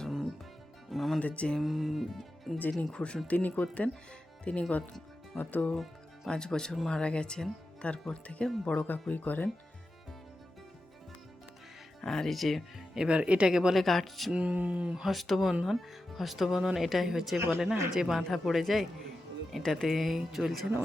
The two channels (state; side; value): normal; both; correlation 0.91